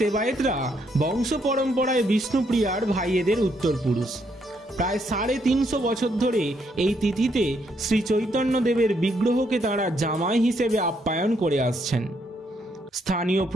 বংশ পরম্পরায় বিষ্ণুপ্রিয়ার ভাইয়েদের উত্তরপুরুষ। প্রায় 350 বছর ধরে এই তিথিতে শ্রী চৈতন্যদেবের বিগ্রহকে তাঁরা জামাই হিসেবে আপ্যায়ন করে আসছেন। স্থানীয়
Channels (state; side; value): normal; both; correlation 0.74